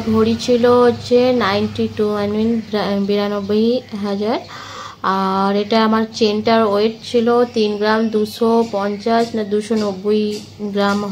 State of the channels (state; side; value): identical; both; correlation 1.00